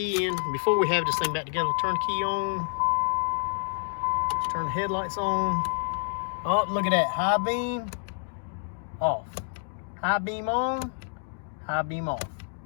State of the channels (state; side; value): silent; right; 59 dB below the other